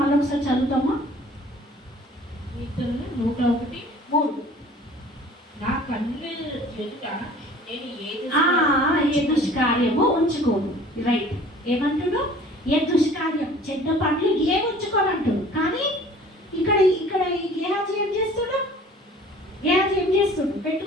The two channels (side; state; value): both; normal; correlation 0.48